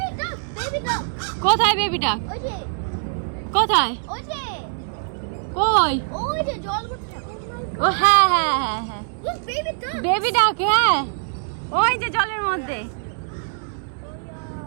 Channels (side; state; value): left; silent; digital silence